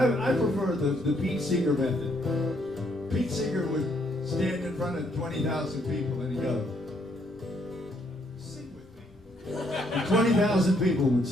prefer the Pete Seeger method. Pete Seeger would stand in front of 20,000 people and he'd go, sing with me. And 20,000 people would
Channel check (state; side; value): normal; both; correlation 0.71